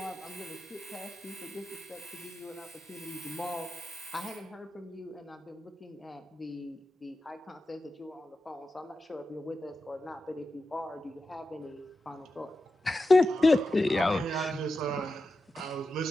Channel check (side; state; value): both; normal; correlation 0.91